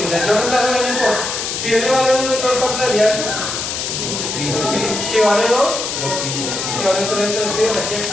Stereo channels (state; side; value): noise; left; hiss, 3 dB below the sound